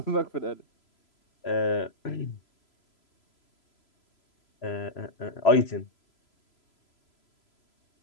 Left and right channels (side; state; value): right; late; 3.0 ms